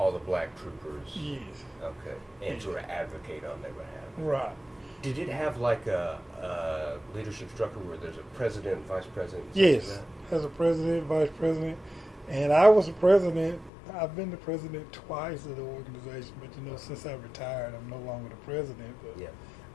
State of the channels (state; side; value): drops out; right; at 13.7 s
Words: the black troopers. Yes. Okay. And sort of advocate on their behalf. Right. Did it have like a leadership structure where there's a president, vice president? Yes. As a president, vice president, and I was a president. I've been the president twice of the organization, but you know, since I retired, I'm no longer the president. But yeah.